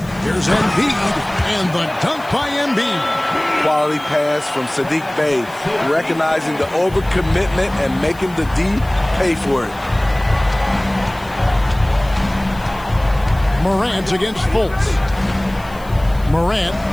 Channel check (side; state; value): left; noise; hiss, 23 dB below the sound